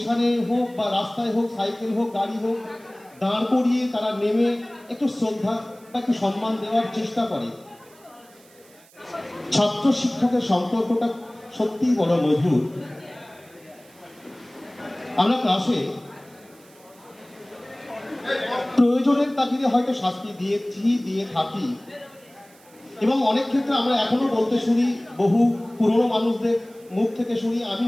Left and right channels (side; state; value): right; noise; hiss, 27 dB below the sound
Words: হোক বা রাস্তায় হোক, সাইকেল হোক, গাড়ি হোক, দাঁড় করিয়ে তারা নেমে একটু শ্রদ্ধা বা একটু সম্মান দেওয়ার চেষ্টা করে। ছাত্র শিক্ষকের সম্পর্কটা সত্যিই বড় মধুর। আমরা ক্লাসে প্রয়োজনের তাগিদে হয়তো শাস্তি দিয়ে থাকি, এবং অনেক ক্ষেত্রে আমরা এখনো বলতে শুনি, বহু পুরনো মানুষদের মুখ থেকে শুনি, আমি